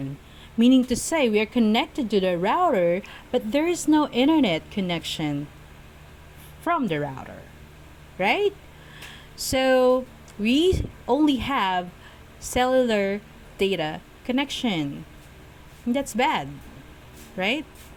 meaning to say we are connected to the router, but there is no internet connection from the router, right? So we only have cellular data connection. That's bad, right?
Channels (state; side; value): identical; both; correlation 1.00